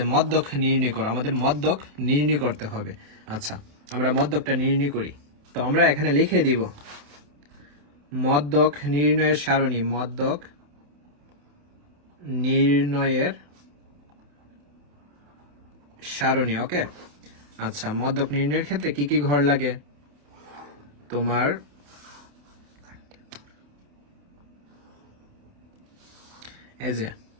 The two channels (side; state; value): left; late; 28 ms